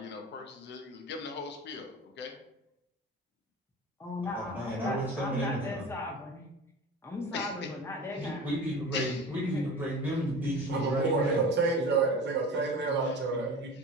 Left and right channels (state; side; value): normal; both; correlation 0.35